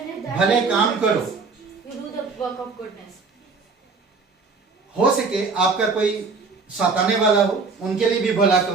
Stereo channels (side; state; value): left; quieter; 4.4 dB